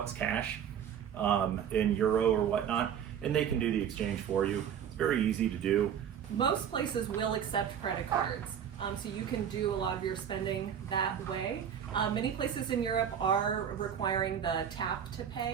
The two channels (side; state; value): left; quieter; 8.7 dB